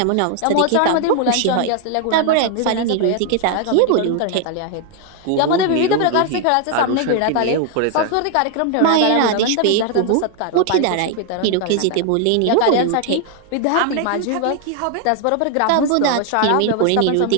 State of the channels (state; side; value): different; both; correlation 0.00